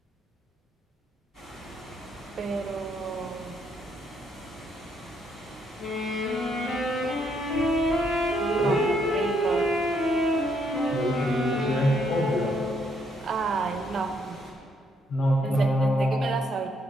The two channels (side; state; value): both; normal; correlation 0.72